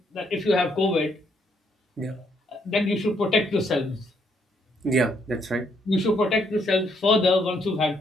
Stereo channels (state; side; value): normal; both; correlation 0.72